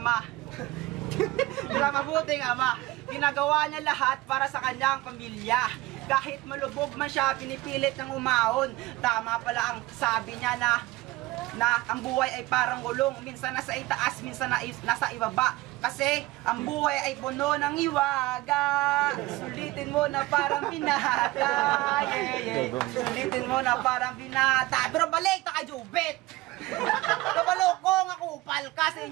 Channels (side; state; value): left; quieter; 19.4 dB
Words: Bilang mabuting ama, ginagawa niya lahat para sa kanyang pamilya. Kahit malubog man siya, pinipilit ng umahon. Tama pala ang sabi niya na ang buhay ay parang gulong. Minsan nasa itaas, minsan nasa ibaba. Kasi ang buhay ay puno ng iwaga. Sulitin mo na parang binata. Sulitin mo na parang binata. Pero balik na kay Jubit. Kabalokong ako upal ka sa